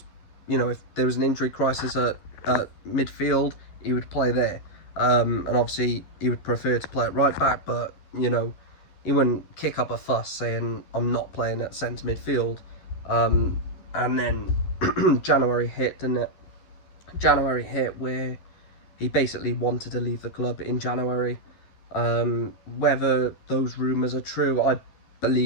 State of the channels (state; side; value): late; right; 12 ms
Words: You know, if there was an injury crisis at midfield, he would play there. And obviously he would prefer to play at right back, but, you know, he wouldn't kick up a fuss saying, I'm not playing at centre midfield. And then January hit, didn't it? January hit where he basically wanted to leave the club in January. Whether those rumours are true, I